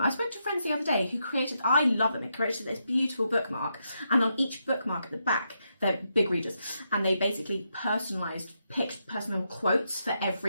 I spoke to friends the other day who I love them, they created this beautiful bookmark, and on each bookmark at the back, they're big readers, and they basically picked personal quotes for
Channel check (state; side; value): inverted; both; correlation -0.82